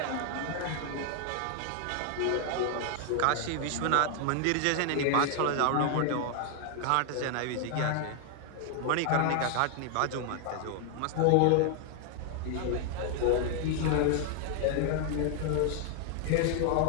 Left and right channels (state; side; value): different; both; correlation 0.00